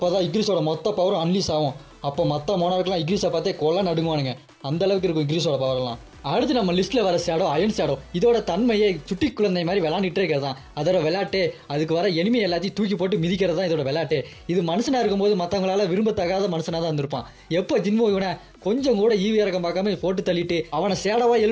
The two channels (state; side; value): identical; both; correlation 1.00